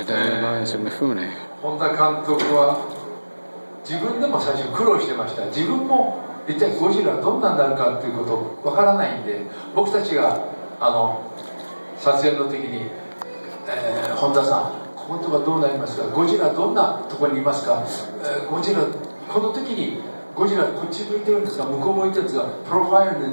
本田監督は自分でも最初苦労してました。自分も一体ゴジラどんなになるかっていうことわからないんで、僕たちが撮影の時に、本田さんこことはどうなりますか、ゴジラどんなところにいますか、ゴジラこの時にゴジラこっち向いてるんですか、向こう向いてるんですか、プロファイル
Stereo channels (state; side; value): inverted; both; correlation -1.00